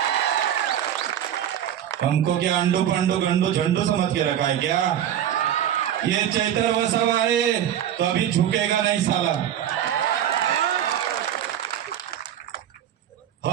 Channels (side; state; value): left; quieter; 10.4 dB